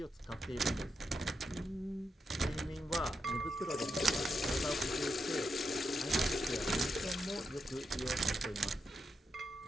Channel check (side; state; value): both; normal; correlation 0.84